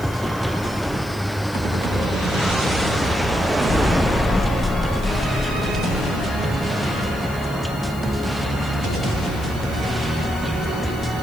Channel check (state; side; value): noise; left; hiss, 19 dB below the sound